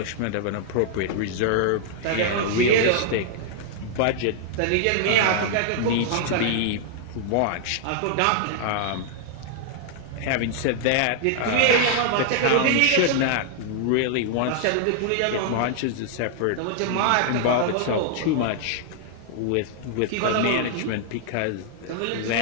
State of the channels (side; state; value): both; different; correlation -0.01